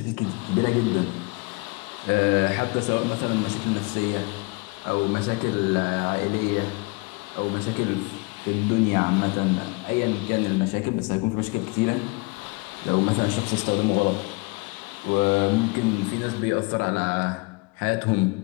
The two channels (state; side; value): quieter; right; 28.3 dB